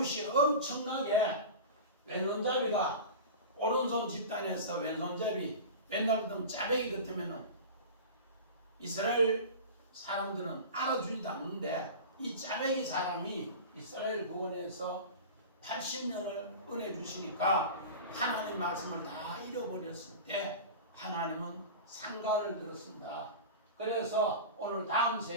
엄청나게 왼손잡이가 오른손 집단에서 왼손잡이 맨날 등 짜배기 같으면은 이스라엘 사람들은 알아주지도 않는데 이 짜배기 사람이 이스라엘 구원에서 80년을 은혜 주시니까 하나님 말씀을 다 잃어버렸을 때 하나님은 상가를 들었습니다. 그래서 오늘 다음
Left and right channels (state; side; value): inverted; both; correlation -0.31